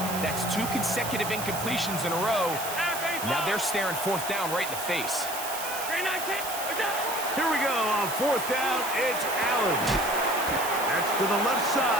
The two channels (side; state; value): right; noise; hiss, 7 dB below the sound